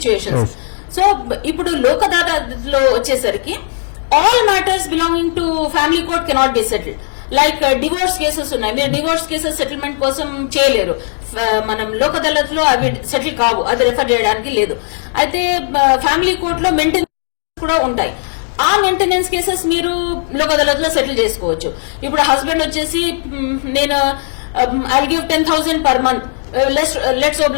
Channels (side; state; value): right; silent; digital silence